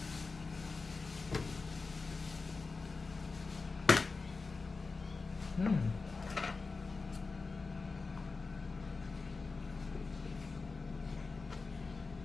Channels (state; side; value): quieter; right; 4.1 dB